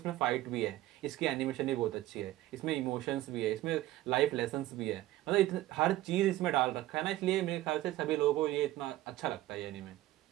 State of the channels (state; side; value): quieter; left; 15.7 dB